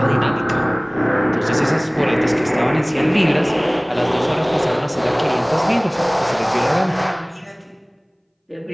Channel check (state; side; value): identical; both; correlation 1.00